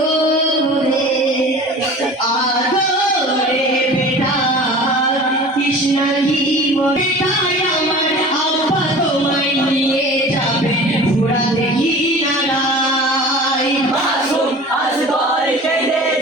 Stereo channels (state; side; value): normal; both; correlation 0.40